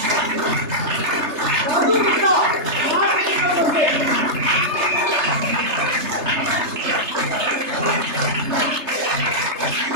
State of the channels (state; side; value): late; left; 3.3 ms